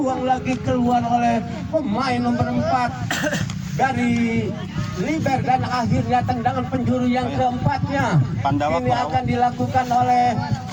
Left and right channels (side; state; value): both; identical; correlation 1.00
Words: lagi keluar oleh pemain nomor 4 dari Liber dan akhirnya tendangan penjuru yang keempatnya ini akan dilakukan oleh